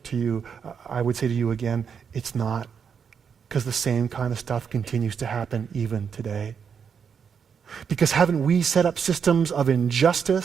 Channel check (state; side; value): quieter; left; 6.9 dB